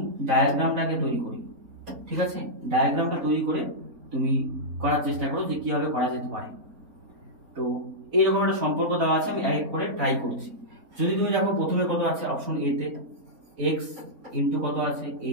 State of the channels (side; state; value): left; late; 4.0 ms